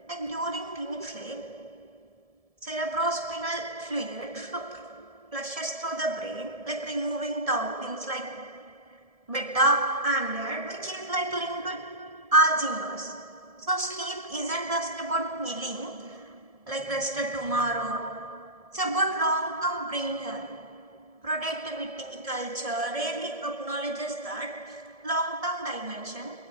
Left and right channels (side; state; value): left; late; 1.7 ms